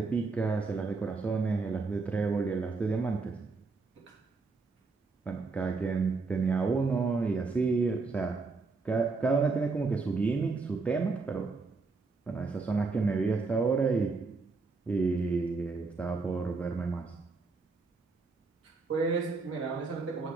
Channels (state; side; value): quieter; left; 4.2 dB